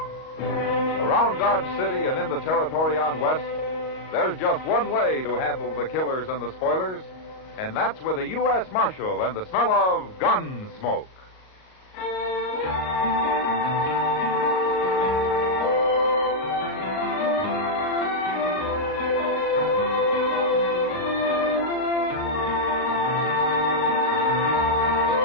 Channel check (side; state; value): right; late; 38 ms